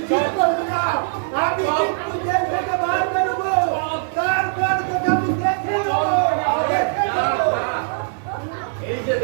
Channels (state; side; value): silent; left; 65 dB below the other